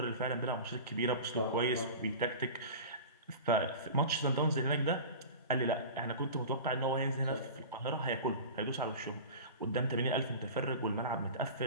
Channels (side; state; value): both; inverted; correlation -0.33